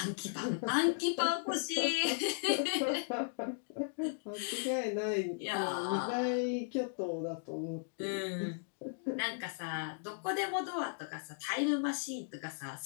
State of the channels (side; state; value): right; silent; digital silence